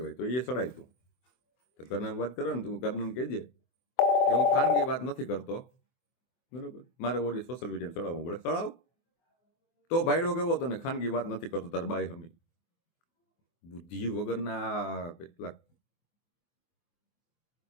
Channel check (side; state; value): right; late; 24 ms